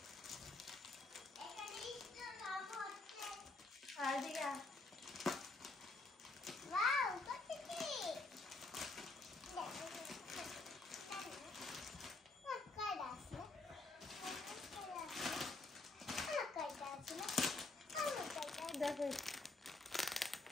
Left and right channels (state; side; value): quieter; right; 3.3 dB